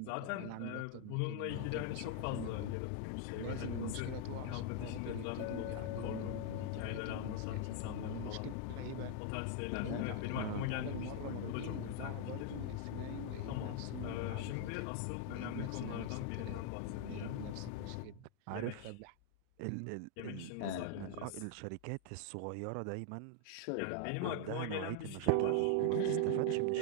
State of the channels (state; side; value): different; both; correlation 0.00